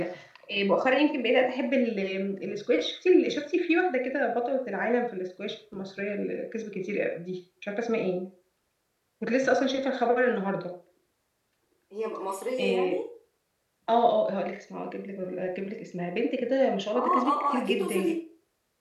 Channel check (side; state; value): both; identical; correlation 1.00